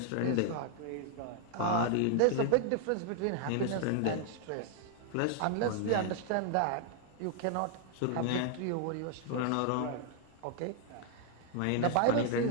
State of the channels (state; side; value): different; both; correlation 0.00